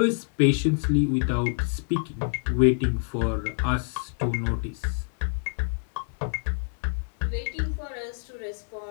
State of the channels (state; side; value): silent; right; 60 dB below the other